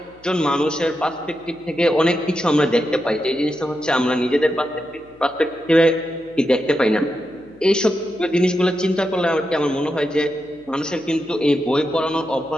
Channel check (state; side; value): noise; left; hum, 29 dB below the sound